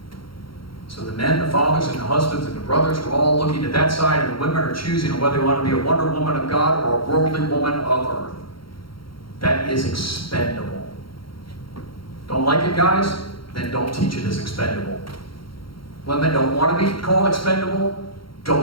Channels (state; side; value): late; right; 0.73 ms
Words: So the men, the fathers, and the husbands, and the brothers are all looking at that side, and the women are choosing whether they want to be a wonder woman of God or a worldly woman of earth. That is expendable. Don't like it, guys? Then don't teach it as expendable. Women don't want to be called expendable?